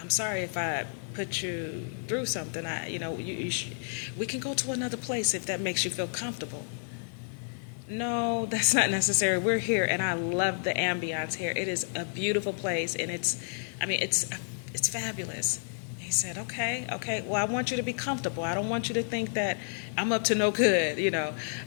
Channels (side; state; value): right; silent; digital silence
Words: sorry if I put you through something. We can go to another place if that makes you feel comfortable. No, that's not necessary. We're here, and I love the ambiance here. It is a beautiful place, and it's fabulous. He said, okay, well, I want you to be comfortable. I don't want you to think that I'm up to no good,